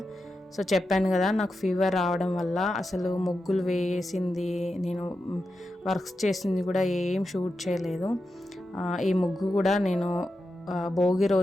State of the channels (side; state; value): both; normal; correlation 0.89